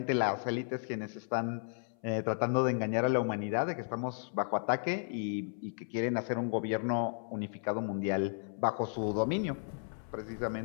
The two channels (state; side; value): silent; right; 55 dB below the other